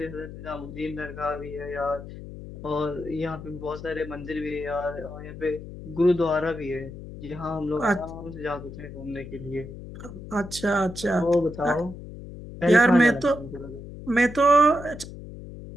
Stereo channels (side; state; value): left; noise; hum, 12 dB below the sound